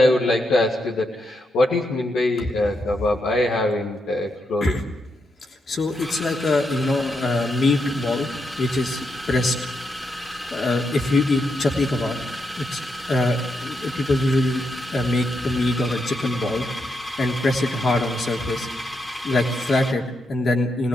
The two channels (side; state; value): both; normal; correlation 0.82